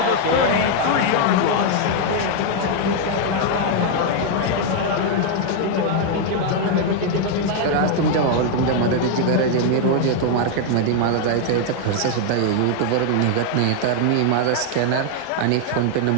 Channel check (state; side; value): different; both; correlation 0.00